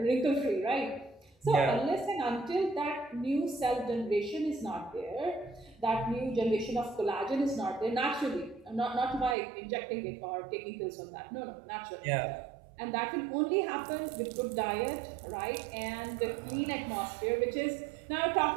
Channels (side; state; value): left; drops out; at 9.3 s